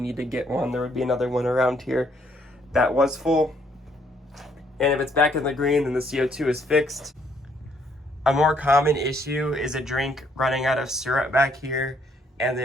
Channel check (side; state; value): both; normal; correlation 0.68